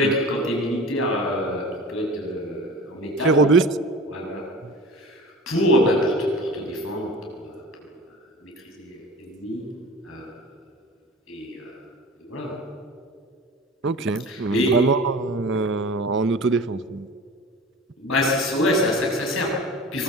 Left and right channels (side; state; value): both; normal; correlation 0.37